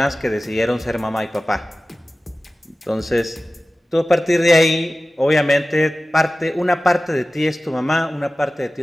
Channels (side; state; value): both; normal; correlation 0.96